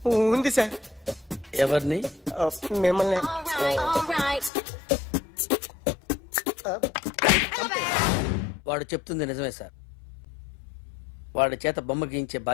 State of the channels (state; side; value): drops out; right; at 4.5 s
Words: ఉంది సార్. ఎవరిని? మిమ్మల్ని. All right. వాడు చెప్తుంది నిజమే సార్. వాడి చేత బొమ్మ గీయించే